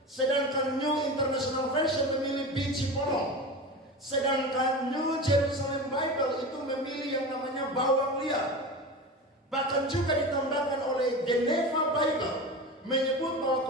Sedangkan New International Version memilih biji polong. Sedangkan New Jerusalem Bible itu memilih yang namanya bawang liar. Bahkan juga ditambahkan oleh Geneva Bible menyebut bahwa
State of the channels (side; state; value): both; normal; correlation 0.28